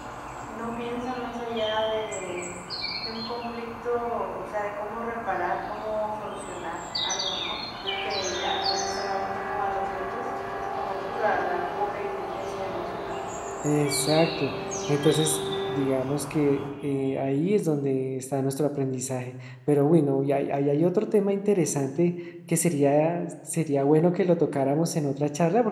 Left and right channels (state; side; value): identical; both; correlation 1.00